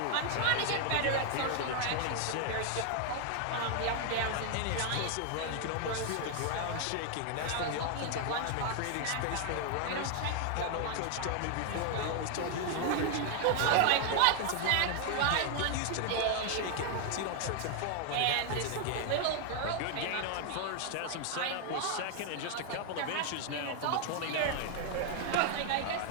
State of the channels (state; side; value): different; both; correlation 0.00